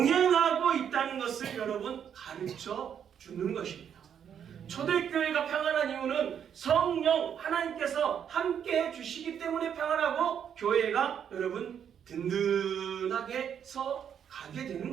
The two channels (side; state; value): left; quieter; 8.5 dB